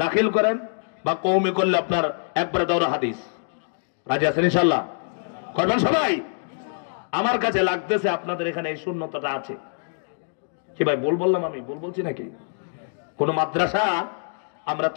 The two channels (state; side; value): silent; right; 62 dB below the other